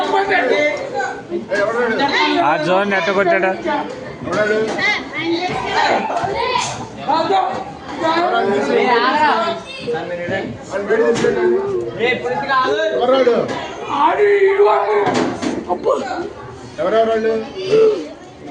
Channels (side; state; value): both; identical; correlation 1.00